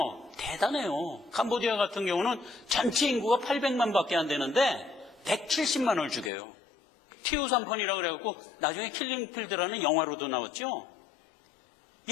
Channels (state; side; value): drops out; right; at 6.3 s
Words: 대단해요. 캄보디아 같은 경우는 전체 인구가 800만 밖에 안 되는데 170만을 죽여요. 티우산펀이라고 그래갖고 나중에 킬링필드라는 영화로도 나왔죠.